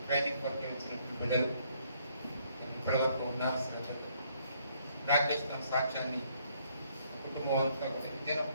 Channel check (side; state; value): both; inverted; correlation -0.67